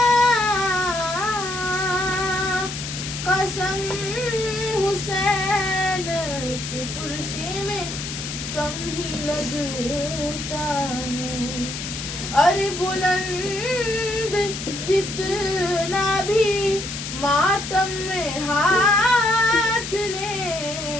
कसम हुसैन की कुर्सी में कम ही लगता है। अरे बुलंद जितना भी मातम में हाथ ले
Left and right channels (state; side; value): noise; left; hiss, 7 dB below the sound